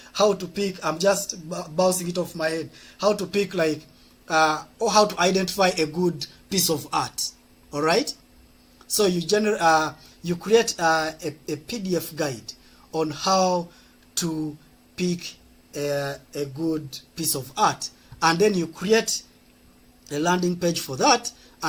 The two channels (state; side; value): identical; both; correlation 1.00